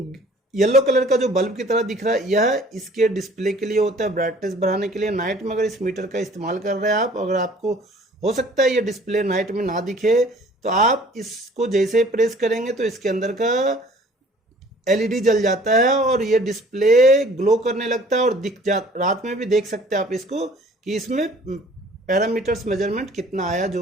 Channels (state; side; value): normal; both; correlation 0.52